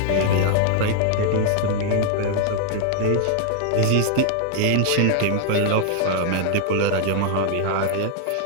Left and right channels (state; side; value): different; both; correlation 0.00